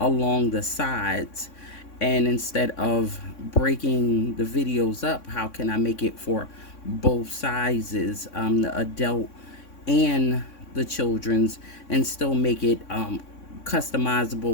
the sides. And instead of breaking the videos up, how can I make it for both sizes, the adult and the children's, and still make it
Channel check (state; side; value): late; right; 3.6 ms